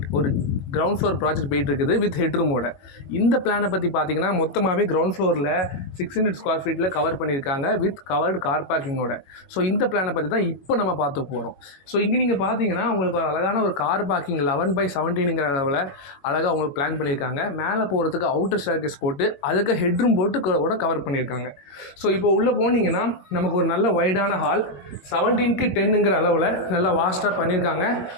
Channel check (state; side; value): late; right; 21 ms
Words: ஒரு கிரவுண்ட் ஃப்ளோர் ப்ராஜெக்ட் போயிட்டு இருக்குது வித் ஹெட்ரூமோட. இந்த பிளானை பற்றி பார்த்தீங்கன்னா, மொத்தமாகவே கிரவுண்ட் ஃப்ளோரில் 600 ஸ்கொயர் ஃபீட்டில் கவர் பண்ணியிருக்காங்க வித் கவர்டு கார் பார்க்கிங்கோட. ஸோ இந்த பிளானை பற்றி தான் இப்போ நம்ம பார்த்து போகிறோம். ஸோ இங்கே நீங்கள் பார்த்தீங்கன்னா, உங்களுக்கு ஒரு அழகான ஒரு கார் பார்க்கிங் 11/17ங்கிற அளவில் அழகாக உங்களுக்கு பிளான் பண்ணியிருக்காங்க. மேலே போகிறதுக்கு அவுட்டர் ஸ்டேர்கேஸ் போட்டு அதுக்கு ஹெட்ரூம் போட்டு கூட கவர் பண்ணியிருக்காங்க. ஸோ இப்போ உள்ளே போனீங்கன்னா நமக்கு ஒரு நல்ல வைடான ஹால் 17க்கு 10ங்கிற அளவில் நல்லா வாஸ்ட்டாக பண்ணியிருக்காங்க.